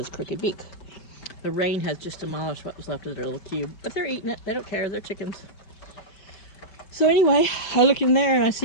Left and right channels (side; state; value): right; late; 5.2 ms